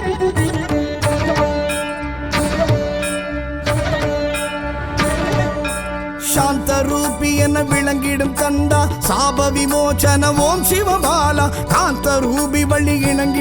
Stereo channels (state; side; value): noise; left; hum, 20 dB below the sound